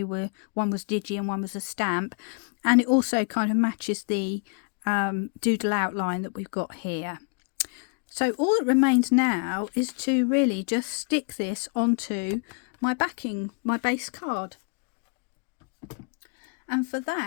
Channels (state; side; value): quieter; right; 38.1 dB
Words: were, one was digi and one was a stamp. And it also kind of matches the doodle outline that we've got here. So all that remains now is to really just stick this onto my backing, my base card. And for